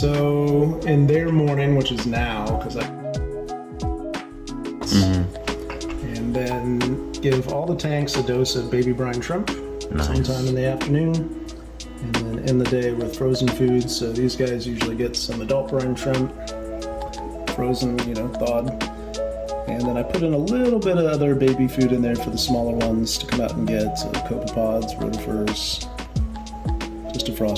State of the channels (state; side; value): identical; both; correlation 1.00